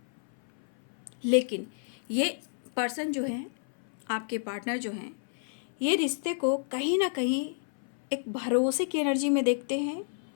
लेकिन ये पर्सन जो है, आपके पार्टनर जो हैं, ये रिश्ते को कहीं ना कहीं एक भरोसे की एनर्जी में देखते हैं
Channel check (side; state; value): right; silent; 57 dB below the other